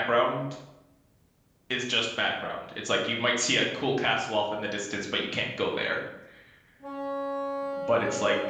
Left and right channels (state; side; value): identical; both; correlation 1.00